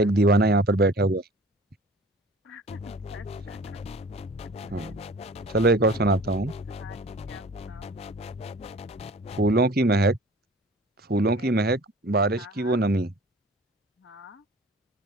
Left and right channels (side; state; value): both; normal; correlation 0.45